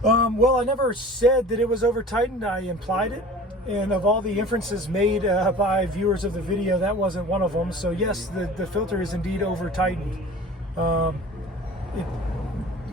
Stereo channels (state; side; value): normal; both; correlation 0.41